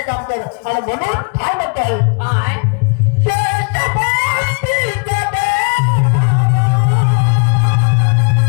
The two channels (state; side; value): quieter; right; 36.6 dB